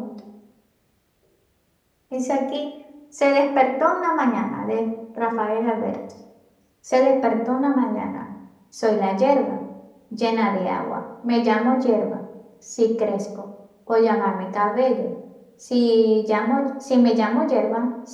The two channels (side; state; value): both; identical; correlation 1.00